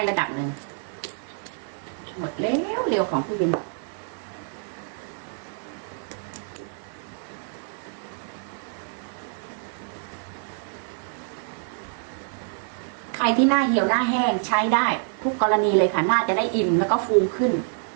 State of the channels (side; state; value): left; silent; 61 dB below the other